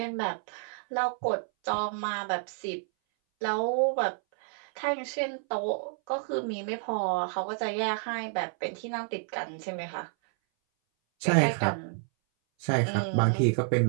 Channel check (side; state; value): left; silent; 58 dB below the other